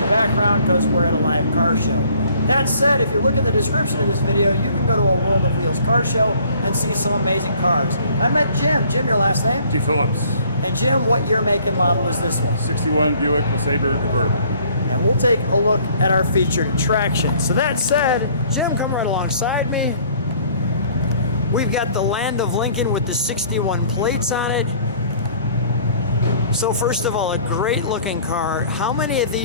the background because we're at a live car show. That said, if you look at the description of this video, you can go to a World of Wheels car show and see some amazing cars. I met Jim. Jim, your last name? DePhilllips. And Jim, what year, make, and model is this one? 61 Buick LeSabre Convertible. And we'll take a look at our featured attraction. So that said, Jim, come right alongside me. We've got the Land of Lincoln with the 61 plates on it. So first of all, a great looking car. How many of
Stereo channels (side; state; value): both; inverted; correlation -0.56